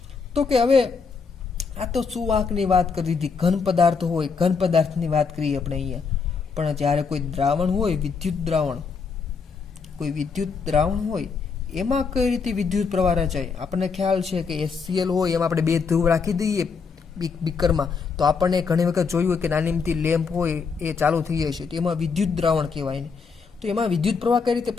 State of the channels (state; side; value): quieter; right; 5.3 dB